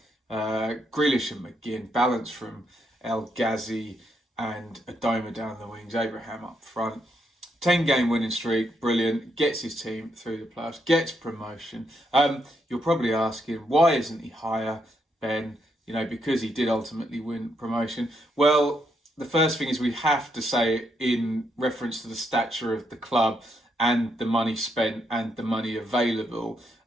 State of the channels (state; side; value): normal; both; correlation 0.78